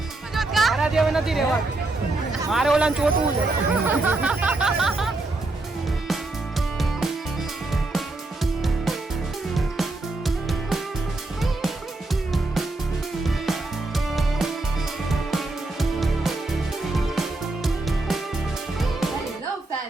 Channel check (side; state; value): left; quieter; 3.0 dB